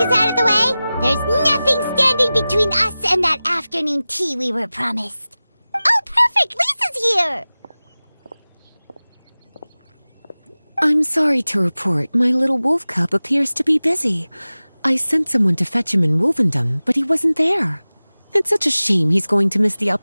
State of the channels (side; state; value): both; inverted; correlation -0.97